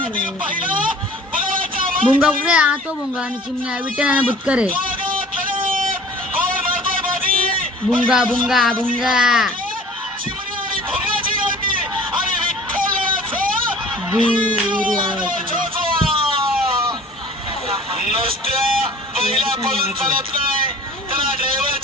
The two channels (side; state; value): both; normal; correlation 0.47